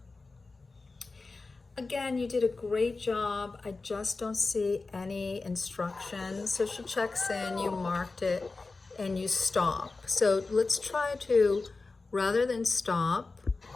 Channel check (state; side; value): quieter; right; 3.7 dB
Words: Again, you did a great job. I just don't see any instructions. So she checks in, you marked it, and you stop. So let's try to, rather than stop,